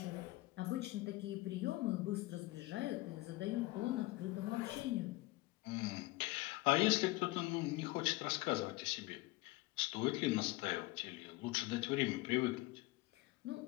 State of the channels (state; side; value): quieter; right; 20.6 dB